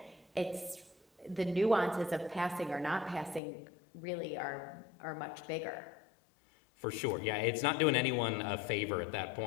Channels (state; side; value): drops out; right; at 3.4 s